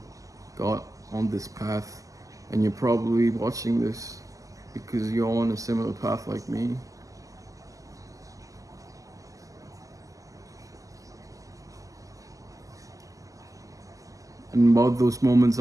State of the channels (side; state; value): left; late; 0.16 ms